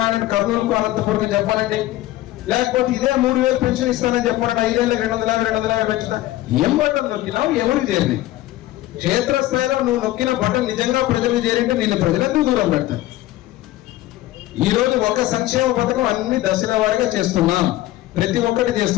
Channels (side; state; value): right; quieter; 15.8 dB